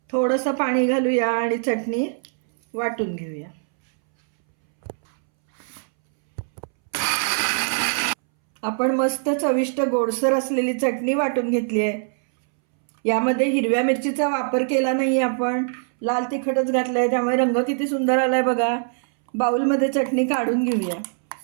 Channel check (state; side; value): silent; left; 64 dB below the other